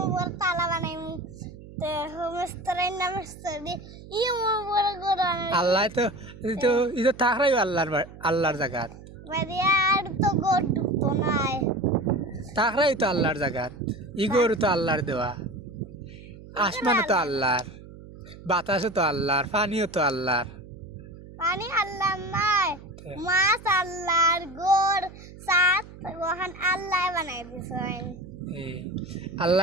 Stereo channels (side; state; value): right; noise; hum, 17 dB below the sound